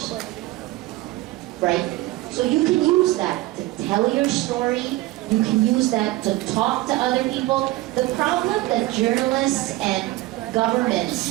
right? So you can use that to tell your story, you can use that to talk to other people. The problem that journalists and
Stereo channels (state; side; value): quieter; left; 18.5 dB